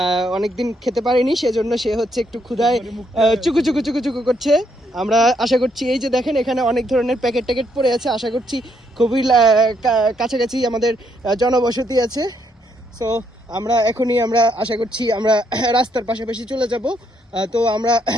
অনেকদিন খেতে পারেনি, সেজন্য সে হচ্ছে একটু ক্ষুধায় চুকু চুকু চুকু চুকু করছে। আমরা আশা করছি, এই যে দেখেন এখানে অনেক ধরনের প্যাকেট ট্যাকেট পড়ে আছে, আশা করছি খুবই কাছাকাছি আমাদের জনবসতি আছে। সো আমরা আশা করছি আমরা রাস্তার পাশাপাশি চলে যাব। তো আমরা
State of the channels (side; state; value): both; normal; correlation 0.74